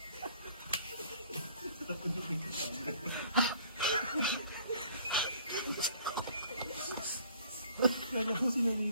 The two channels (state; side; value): inverted; both; correlation -0.55